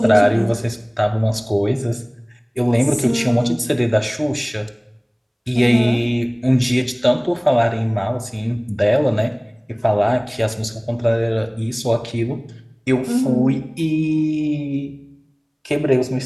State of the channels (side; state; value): both; identical; correlation 1.00